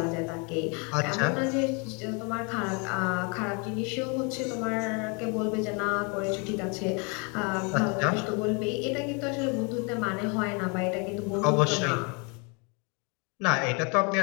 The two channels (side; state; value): right; quieter; 32.9 dB